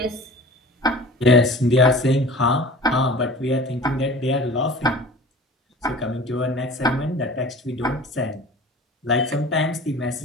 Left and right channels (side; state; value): both; normal; correlation 0.41